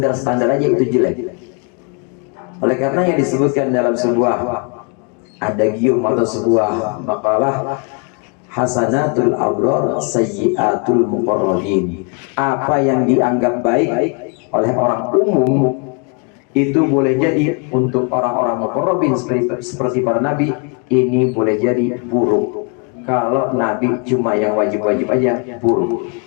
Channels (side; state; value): right; quieter; 36.6 dB